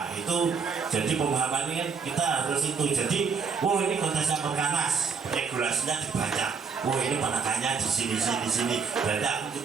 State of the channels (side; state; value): left; quieter; 5.6 dB